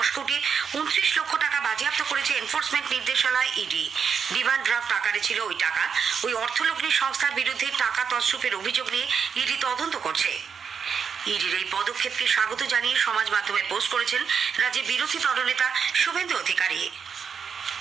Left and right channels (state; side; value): quieter; left; 6.6 dB